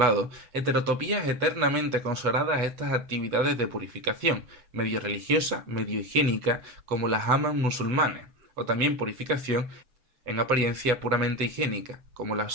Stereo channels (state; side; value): late; left; 8.4 ms